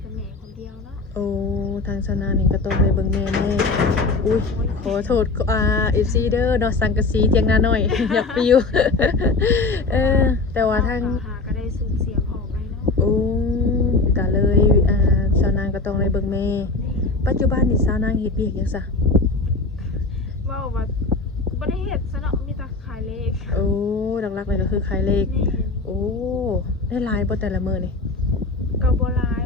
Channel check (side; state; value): right; quieter; 3.6 dB